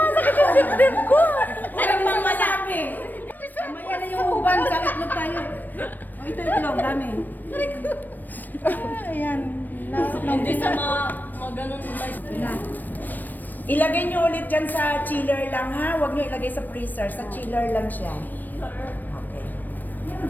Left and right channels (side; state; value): right; late; 0.089 ms